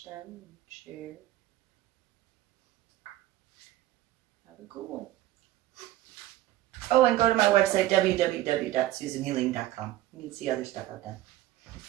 them and share. Have a good one. Oh, and go to my website, www.susanhealing.com. You can see other stuff out there.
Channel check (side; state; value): left; quieter; 15.2 dB